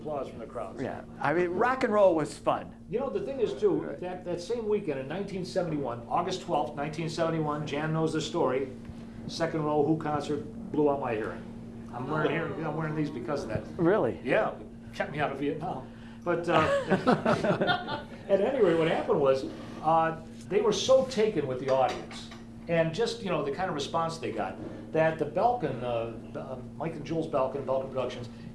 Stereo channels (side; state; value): both; identical; correlation 1.00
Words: from the crowd. Yeah. I mean, rock and roll was fun. You know, the thing is, too, that same weekend in 1971, August 12th, 1971, Jan knows the story, second row Who concert blew out my hearing. I'm wearing these because of that. Really? Yeah, kept me out of Vietnam. But at any rate, what happened was they were so taken with the audience and just, you know, the kind of response they got that the Belkin, Mike and Jules Belkin Productions,